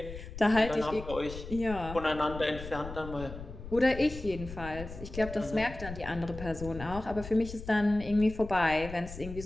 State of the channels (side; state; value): left; noise; rumble, 11 dB below the sound